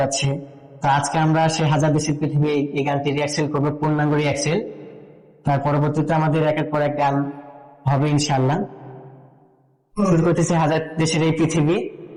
তো আজকে আমরা সেই হাজার দেশের পৃথিবী এই গানটি রিহার্সেল করবো, পূর্ণাঙ্গ রিহার্সেল। তার পরবর্তীতে আমাদের একের পর এক গান হবে ইনশাআল্লাহ। শুরু করতেছে হাজার দেশের এই পৃথিবী,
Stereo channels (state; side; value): identical; both; correlation 1.00